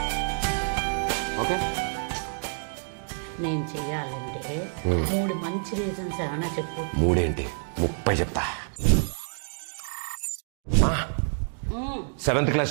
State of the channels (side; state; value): left; silent; digital silence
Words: Okay, నేను చెయ్యాలంటే 3 మంచి రీజన్స్ ఏమైనా చెప్పు. 3 ఏంటి 30 చెప్తా. 7th క్లాస్